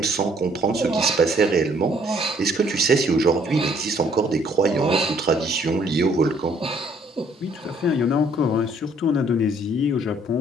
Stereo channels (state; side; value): normal; both; correlation 0.63